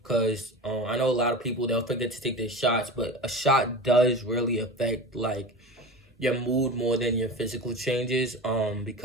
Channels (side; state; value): both; normal; correlation 0.31